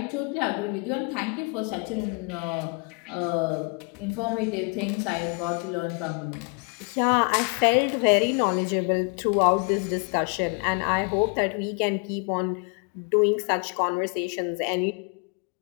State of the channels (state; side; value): quieter; right; 34.9 dB